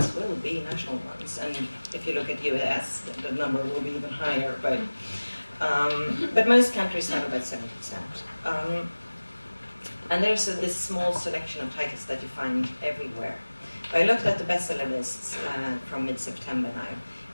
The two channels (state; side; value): inverted; both; correlation -1.00